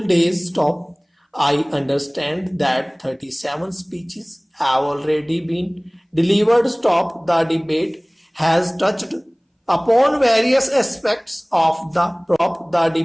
days. Stop. I understand that 37 speeches have already been delivered. Stop. The debate has touched upon various aspects of the prop. The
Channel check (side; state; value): both; identical; correlation 1.00